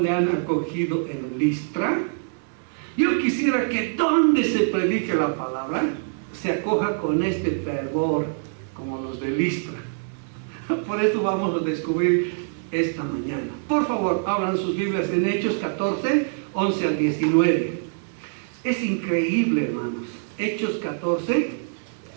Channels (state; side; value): silent; left; 62 dB below the other